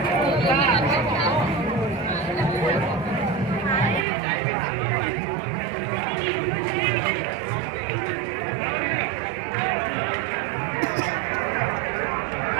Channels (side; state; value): left; drops out; at 4.0 s